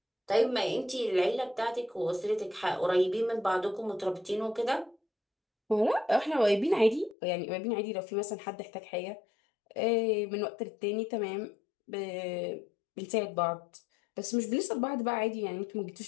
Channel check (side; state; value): right; drops out; at 7.2 s